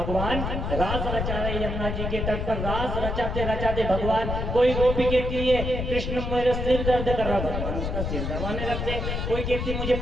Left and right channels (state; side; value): noise; left; rumble, 2 dB below the sound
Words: रास रचा रहे। यमुना जी के तट पर रास रचाते रचाते भगवान, कोई गोपी कहती है कृष्ण मेरा सिर दर्द कर रहा, भगवान उसका सिर दबाने लगते। कोई कहती मुझे